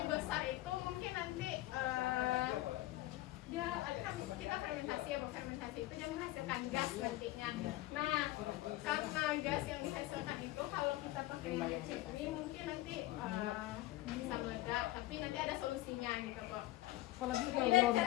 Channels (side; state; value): right; quieter; 17.0 dB